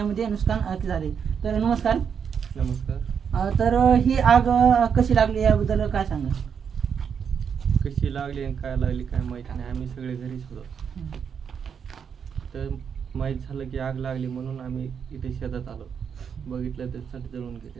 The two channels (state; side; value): quieter; left; 7.1 dB